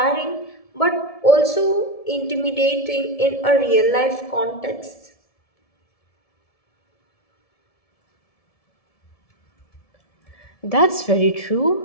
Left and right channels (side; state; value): right; late; 1.7 ms